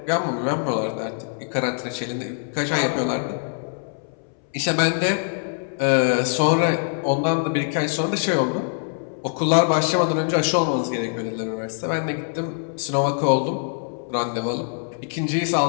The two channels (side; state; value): right; silent; 63 dB below the other